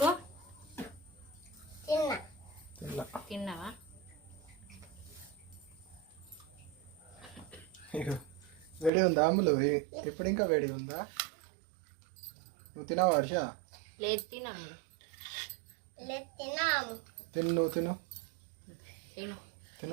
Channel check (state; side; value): drops out; left; at 8.9 s